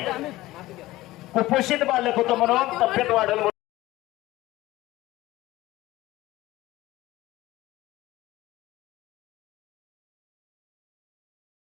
कुपोषित बालक होतं म्हणून तब्येत वाढल।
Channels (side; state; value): right; quieter; 17.5 dB